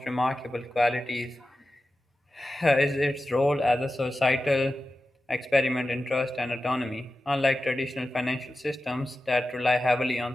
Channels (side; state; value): both; normal; correlation 0.93